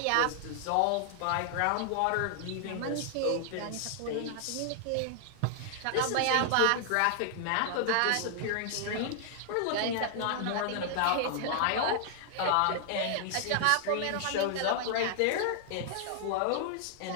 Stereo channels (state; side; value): different; both; correlation 0.00